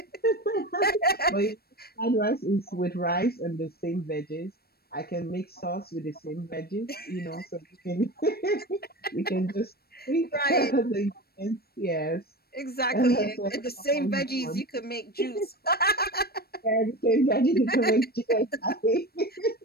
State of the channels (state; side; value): late; right; 0.45 ms